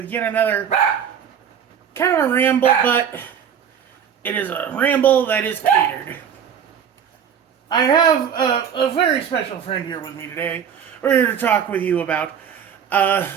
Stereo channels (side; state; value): left; quieter; 8.1 dB